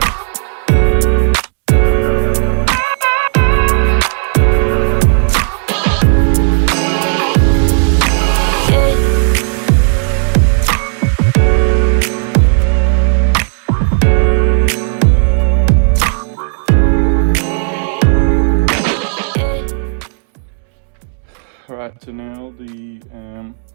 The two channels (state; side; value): silent; left; 71 dB below the other